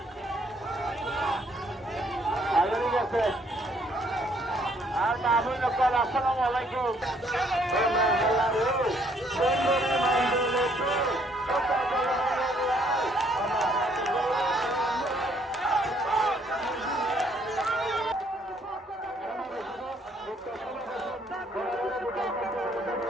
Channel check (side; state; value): both; normal; correlation 0.66